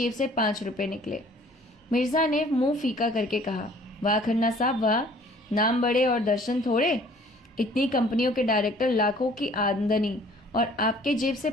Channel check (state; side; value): normal; both; correlation 0.54